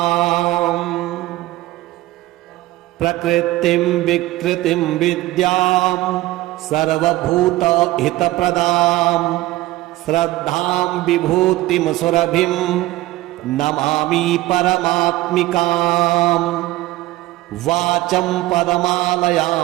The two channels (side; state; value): left; quieter; 17.3 dB